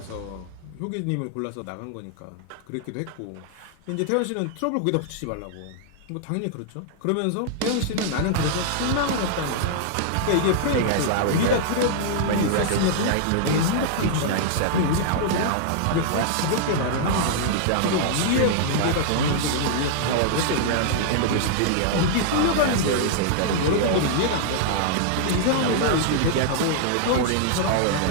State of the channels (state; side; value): different; both; correlation -0.01